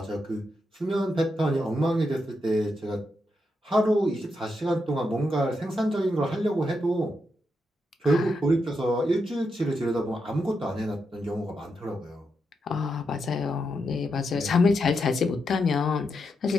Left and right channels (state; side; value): normal; both; correlation 0.84